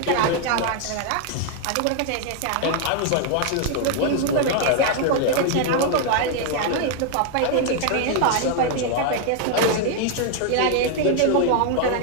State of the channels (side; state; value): both; different; correlation 0.00